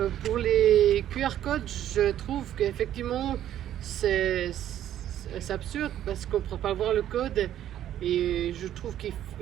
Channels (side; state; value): left; quieter; 11.5 dB